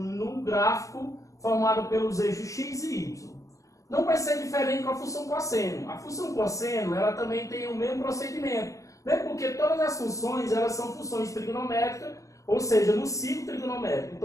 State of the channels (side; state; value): right; late; 0.16 ms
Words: gráfico formado pelos eixos x e y. Não vai ser diferente com a função cosseno. A função cosseno ela também tem o mesmo procedimento, né? Porque todas as funções elas são funções trigonométricas, ou seja, no ciclo trigonométrico.